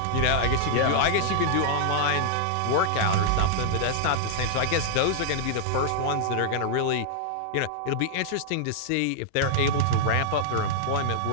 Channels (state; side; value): different; both; correlation -0.01